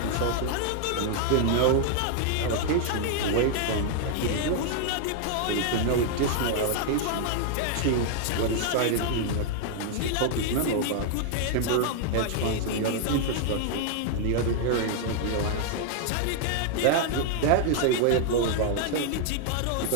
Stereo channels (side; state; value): both; different; correlation 0.00